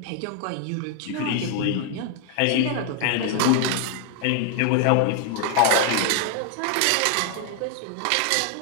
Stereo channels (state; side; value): different; both; correlation 0.00